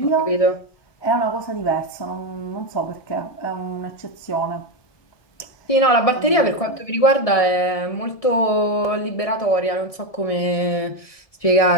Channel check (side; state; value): right; late; 1.7 ms